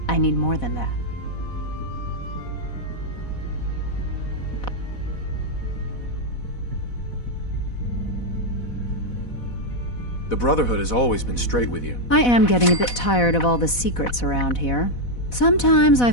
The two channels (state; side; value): late; right; 4.1 ms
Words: I need more than that. The Brotherhood has always been straight with you. I am getting a bit tired of all the secrets around here. Sometimes I